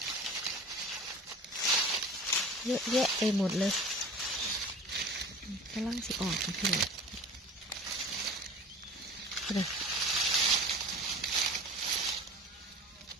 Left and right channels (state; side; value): normal; both; correlation 0.40